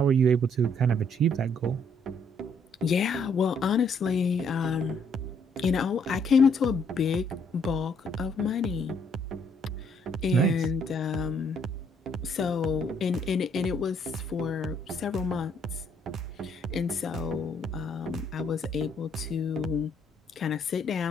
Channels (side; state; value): both; normal; correlation 0.68